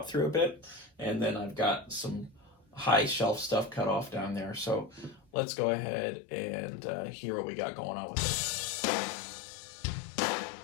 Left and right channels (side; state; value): right; drops out; at 5.2 s